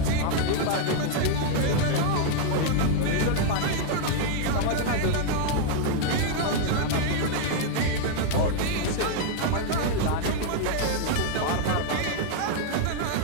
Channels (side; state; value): both; different; correlation 0.00